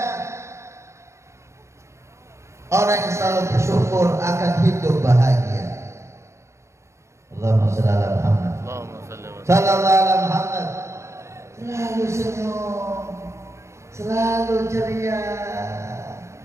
Orang yang selalu bersyukur akan hidup bahagia. Allahumma shalli ala Muhammad. Sallallahu ala Muhammad. Selalu senyum, selalu ceria.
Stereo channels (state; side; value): late; left; 0.14 ms